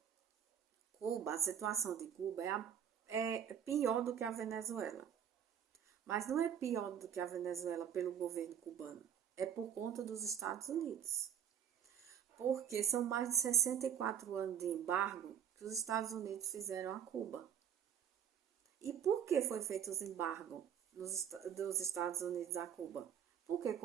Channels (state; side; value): quieter; left; 9.2 dB